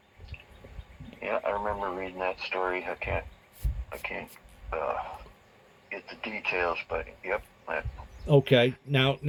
Yeah, I remember reading that story. I can't get the details, but yep, Okay, now,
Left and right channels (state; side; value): identical; both; correlation 1.00